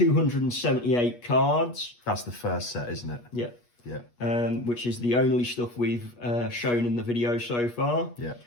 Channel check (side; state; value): right; late; 8.3 ms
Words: cards. That's the first set, isn't it? Yeah. Yeah. Which is the only stuff we've shown in the video so far. Yeah.